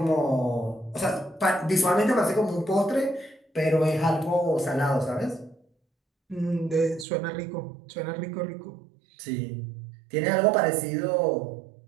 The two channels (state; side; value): drops out; left; at 7.1 s